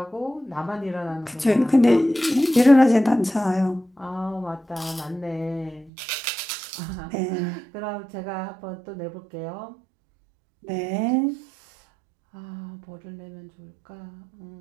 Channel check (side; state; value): left; drops out; at 5.9 s